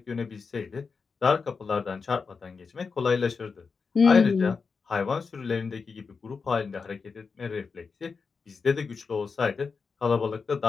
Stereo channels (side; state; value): right; quieter; 5.1 dB